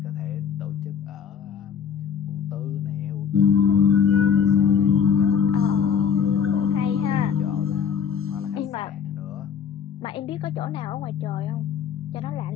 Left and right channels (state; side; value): quieter; right; 7.2 dB